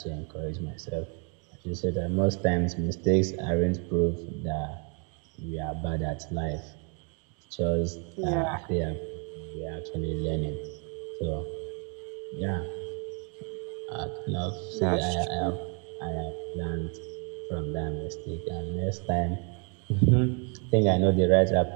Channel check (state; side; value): quieter; left; 37.4 dB